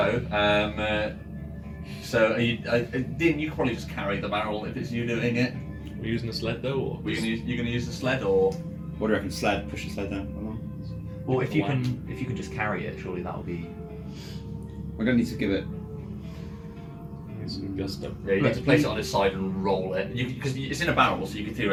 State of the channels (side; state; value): both; identical; correlation 1.00